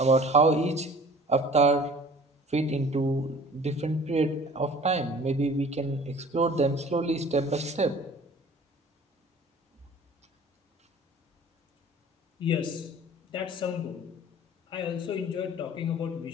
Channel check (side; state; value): both; normal; correlation 0.47